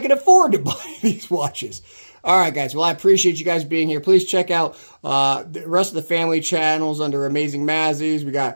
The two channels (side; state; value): both; inverted; correlation -1.00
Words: can afford to buy these watches. All right, guys. Well, I appreciate you guys being here. Please check out the rest of the family channels under Amazing Mazzies. We